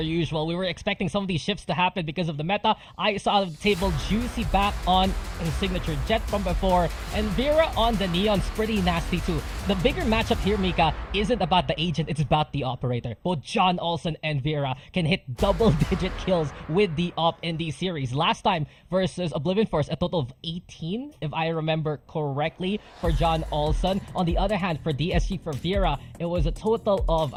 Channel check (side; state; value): both; identical; correlation 1.00